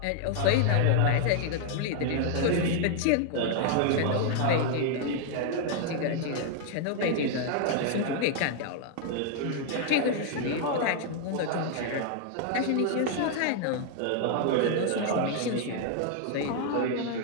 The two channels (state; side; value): different; both; correlation 0.00